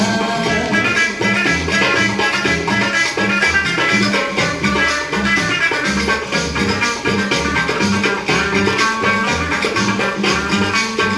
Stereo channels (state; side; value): identical; both; correlation 1.00